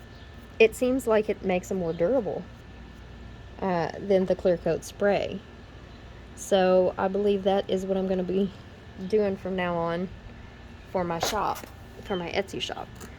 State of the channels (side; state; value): both; identical; correlation 1.00